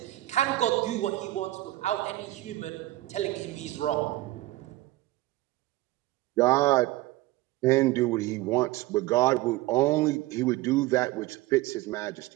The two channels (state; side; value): quieter; left; 17.8 dB